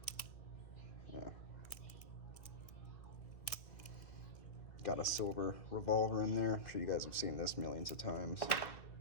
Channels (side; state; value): right; late; 2.3 ms